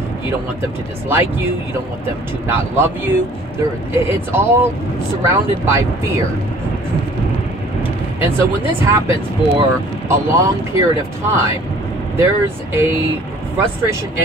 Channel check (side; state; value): both; normal; correlation 0.52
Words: You don't want them to dislike you. You don't want them to not love you. It's all surrounded by fear. And so when this happens for a long period of time, there's a frustration